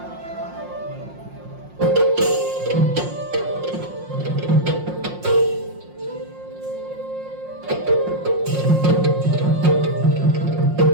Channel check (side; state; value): left; late; 5.6 ms